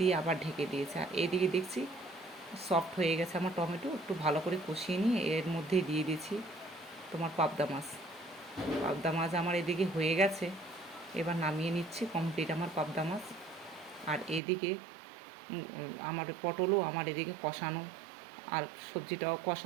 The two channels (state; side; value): drops out; left; at 14.4 s